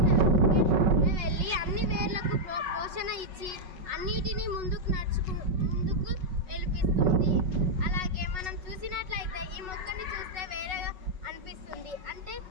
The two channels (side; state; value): left; late; 5.4 ms